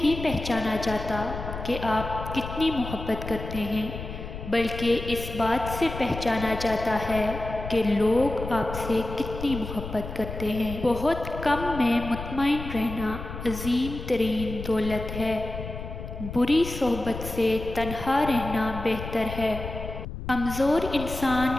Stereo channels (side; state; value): left; noise; rumble, 8 dB below the sound